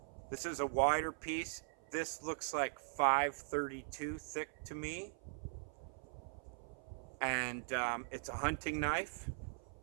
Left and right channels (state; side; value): silent; left; 50 dB below the other